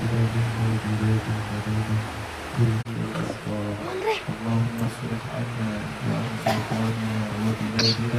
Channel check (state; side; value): identical; both; correlation 1.00